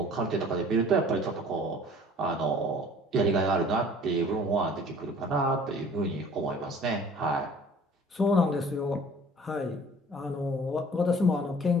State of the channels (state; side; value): normal; both; correlation 0.50